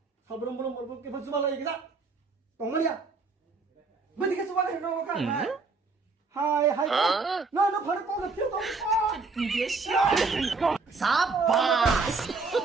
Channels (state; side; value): quieter; left; 4.2 dB